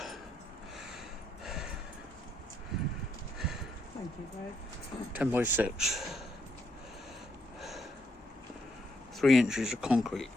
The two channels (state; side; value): normal; both; correlation 0.76